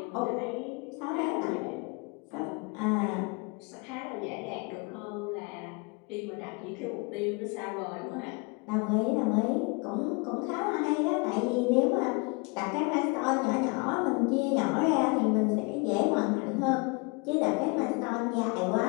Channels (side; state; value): right; quieter; 30.3 dB